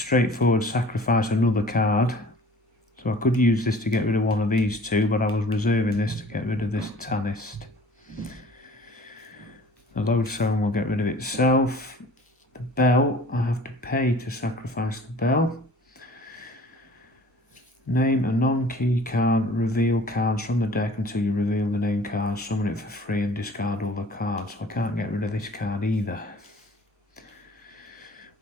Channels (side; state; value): both; normal; correlation 0.48